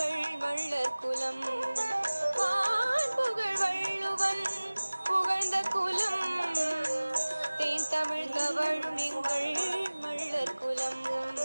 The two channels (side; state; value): both; inverted; correlation -1.00